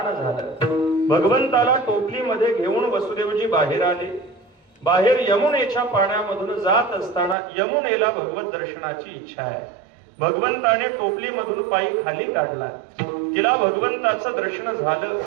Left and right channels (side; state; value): left; drops out; at 7.4 s